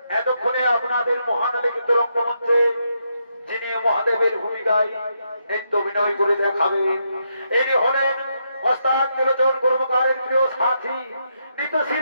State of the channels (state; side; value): inverted; both; correlation -0.80